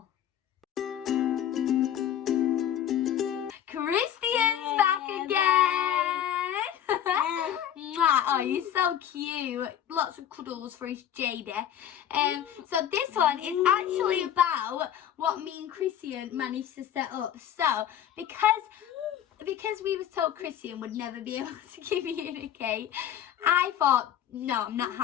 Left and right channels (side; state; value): right; quieter; 10.3 dB